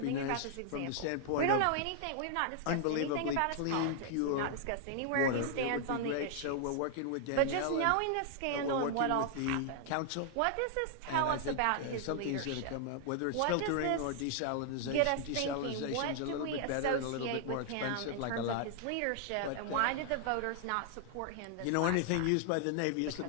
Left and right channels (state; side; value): different; both; correlation 0.00